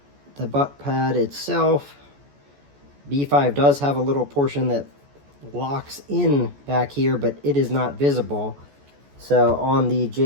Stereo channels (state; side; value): late; left; 14 ms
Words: butt pad itself, B5 does have a little portion that locks in back here, but it is not visible. So on the